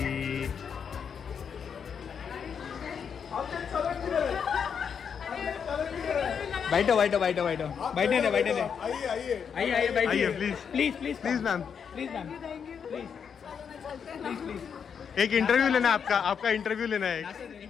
बैठो बैठो बैठो बैठो बैठे नहीं बैठे नहीं. आइए आइए बैठिए please please please please ma'am, please ma'am please please. एक इंटरव्यू लेना है आपका, आपका इंटरव्यू लेना है.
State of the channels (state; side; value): quieter; right; 7.0 dB